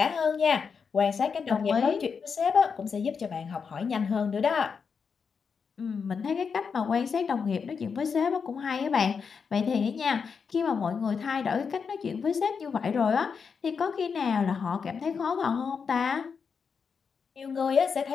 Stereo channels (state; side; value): quieter; right; 5.9 dB